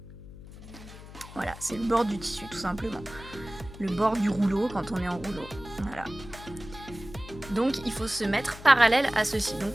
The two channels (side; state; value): left; noise; hum, 16 dB below the sound